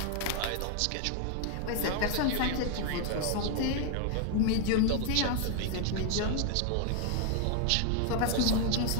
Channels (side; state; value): both; different; correlation 0.00